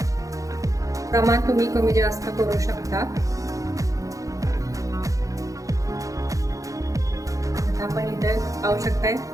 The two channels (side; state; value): left; late; 0.16 ms